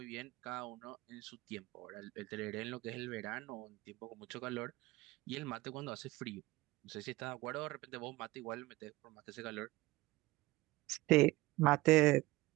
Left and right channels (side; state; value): left; quieter; 19.8 dB